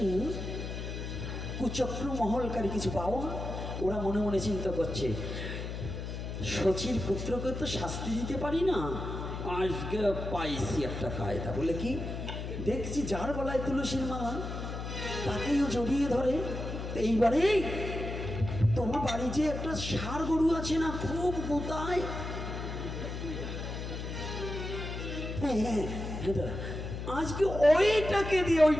কুচক্র মহলকারী কিছু পাওয়া, ওরা মনে মনে চিন্তা করছে শচীর পুত্রকে তো শাস্তি দিতে পারি না, আজকে পাইছি একটা কায়দা। বলে কি? দেখছি যার গলায় তুলসীর মালা তাকেও জড়িয়ে ধরে। এইবারে তোমার বাড়ি যে একটা ষাঁড় গরু আছে না, খুব গোতায়, হ্যাঁ আজকে ওইটাকে দিয়ে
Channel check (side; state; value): left; noise; hum, 6 dB below the sound